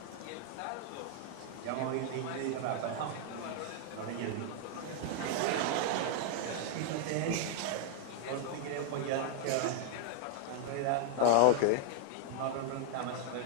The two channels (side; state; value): both; different; correlation 0.00